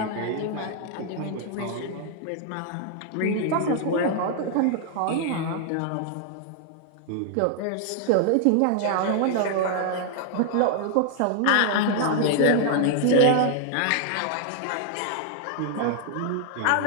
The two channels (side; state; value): both; different; correlation 0.00